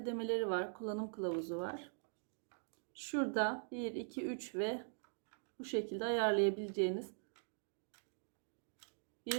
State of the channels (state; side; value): silent; left; digital silence